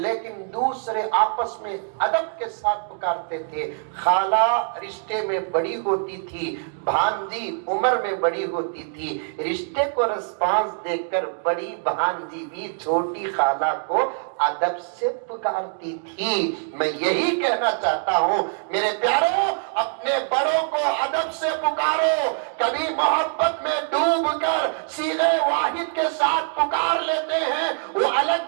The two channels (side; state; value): left; silent; digital silence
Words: لیکن دوسرے آپس میں ادب کے ساتھ پکارتے تھے۔ خالہ رشتے میں بڑی ہوتی تھی، بھانجی عمر میں بڑی ہوتی تھی، رشتے کو رسپانس دے کر بڑی بھانجی بھی چھوٹی خالہ کو ادب سے پکارتی تھی۔ میں یہی کہنا چاہتا ہوں میرے پیاروں، اپنے بڑوں کو ادب سے پکارو۔ کبھی محبت میں ڈوب کر صیغہ واحد کے ساتھ پکار لیتے ہیں، وہ الگ